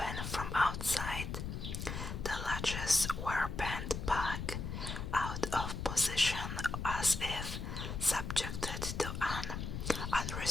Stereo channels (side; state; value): left; noise; rumble, 5 dB below the sound